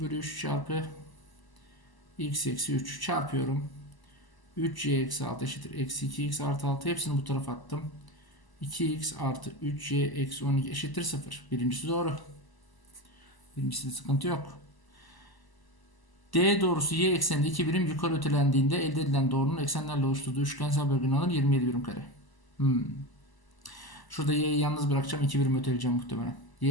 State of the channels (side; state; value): right; late; 1.0 ms